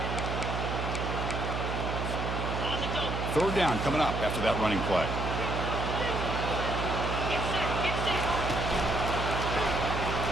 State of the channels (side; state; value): right; noise; hum, 2 dB below the sound